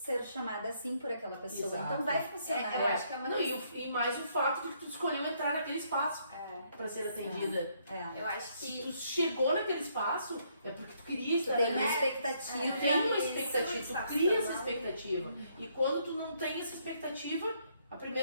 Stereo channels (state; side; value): inverted; both; correlation -0.70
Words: chamada assim por aquela pessoa. Exato. Então vai funcionar. Eu acho que é uma Não, e mais o fato de que tu escolheu entrar naquele espaço para ser atendida. É. Eu acho Se que tu chegou naquele espaço, é porque tu queria Tu estar tem uma naquele expectativa. Tu tem uma Isso, expectativa, tu sabe? cria essa expectativa. E quando tu não tem essa expectativa, a